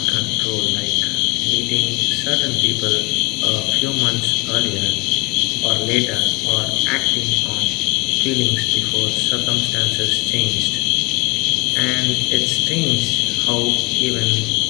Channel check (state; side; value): quieter; right; 26.4 dB